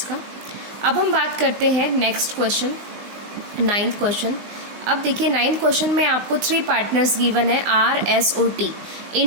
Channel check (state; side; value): late; left; 19 ms